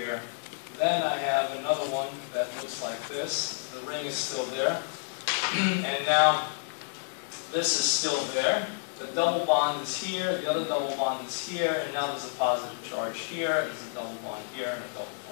then I have another one that looks like this. The ring is still there. And now this is still there. The double bond is here, the other double bond is here, and now there's a positive charge here, there's a double bond here, and a double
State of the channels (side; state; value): right; silent; 58 dB below the other